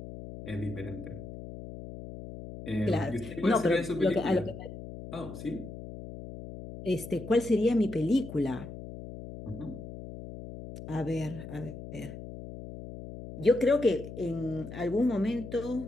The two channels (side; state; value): left; noise; hum, 11 dB below the sound